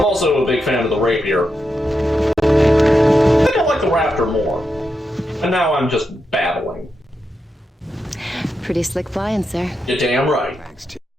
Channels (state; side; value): normal; both; correlation 0.86